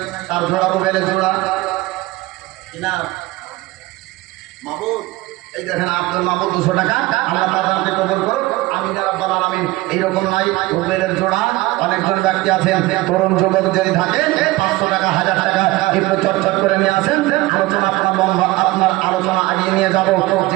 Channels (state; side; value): quieter; left; 19.8 dB